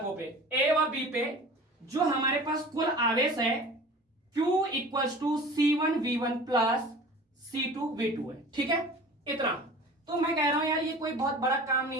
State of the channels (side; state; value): both; normal; correlation 0.41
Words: पे A व B पे जो हमारे पास कुल आवेश है Q equals to C1 V1 plus C2 V2 है, ठीक है। इतना तो मैं कह रहा हूं यार ये कोई बहुत बड़ा काम नहीं